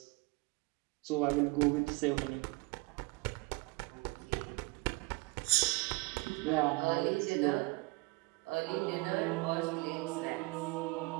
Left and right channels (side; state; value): left; quieter; 26.3 dB